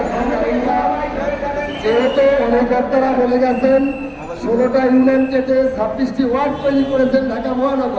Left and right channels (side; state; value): both; identical; correlation 1.00